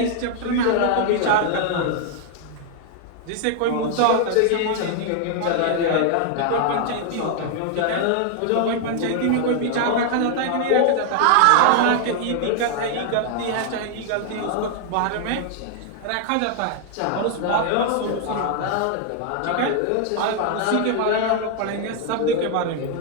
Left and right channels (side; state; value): both; different; correlation 0.00